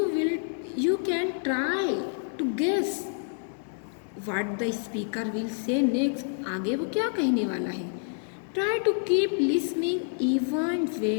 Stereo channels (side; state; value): right; silent; 59 dB below the other